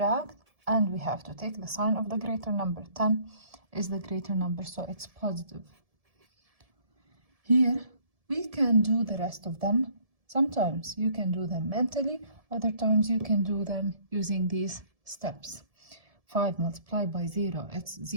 and we have to take the sign of the greater number. 10 is the greater number, so it's positive. Here, we can do the rest of them. Sometimes you can do them mentally, other times you can do them using these steps. 5 multiplied by 0, it's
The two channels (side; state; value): left; late; 1.7 ms